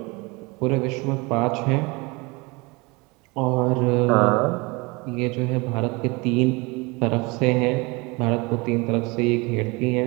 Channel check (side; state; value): left; quieter; 26.1 dB